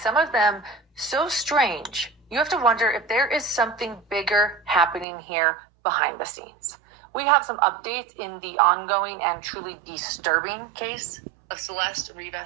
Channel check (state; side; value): drops out; left; at 5.1 s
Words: of them so strange. You have to wonder if there is something bigger happening here behind the scenes. We have some updates in the ongoing and truly disturbing case of Celeste